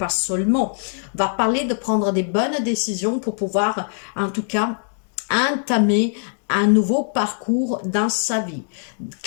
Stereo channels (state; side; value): silent; right; digital silence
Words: seulement. Va parler de prendre des bonnes décisions pour pouvoir, en tout cas, entamer un nouveau parcours dans sa vie.